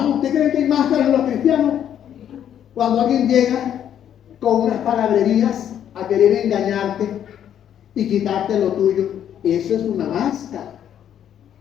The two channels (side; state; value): right; quieter; 9.9 dB